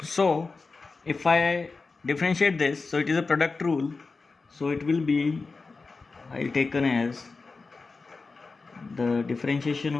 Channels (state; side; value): quieter; right; 4.1 dB